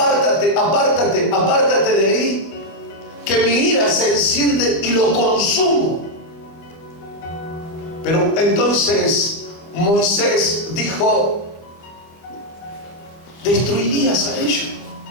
apártate, apártate de ahí, que mi ira se enciende y lo consumo. Pero entonces Moisés dijo: destruirías a ellos,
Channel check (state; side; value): late; right; 25 ms